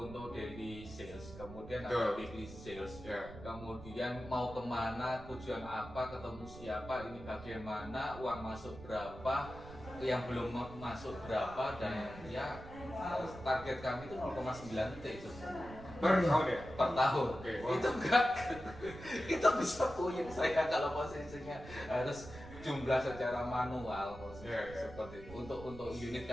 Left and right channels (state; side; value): noise; right; rumble, 14 dB below the sound